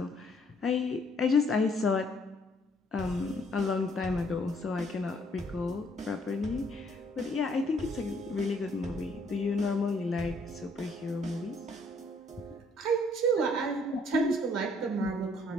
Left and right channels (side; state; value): both; normal; correlation 0.65